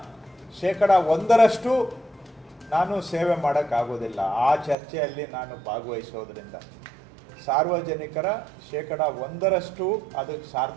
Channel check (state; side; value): drops out; left; at 4.8 s